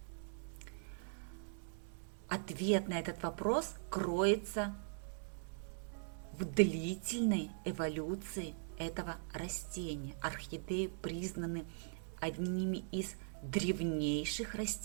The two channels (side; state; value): left; silent; digital silence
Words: Ответ на этот вопрос кроется в длительной эволюции этого растения. Орхидеи признаны одними из древнейших